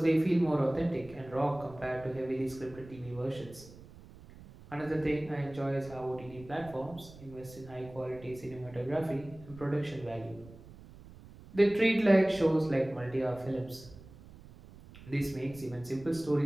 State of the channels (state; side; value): noise; right; rumble, 19 dB below the sound